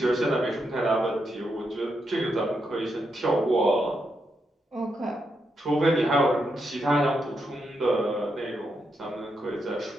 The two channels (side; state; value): both; normal; correlation 0.82